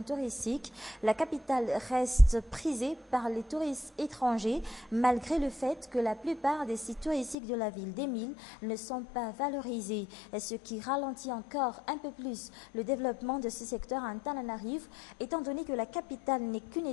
touristique. La capitale reste prisée par les touristes étrangers, malgré le fait que la plupart des sites touristiques de la ville d'Emile ne sont pas valorisés, ce qui ralentit encore un peu plus le développement de ce secteur à Antananarivo, étant donné que la capitale n'est qu'une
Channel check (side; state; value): right; drops out; at 7.4 s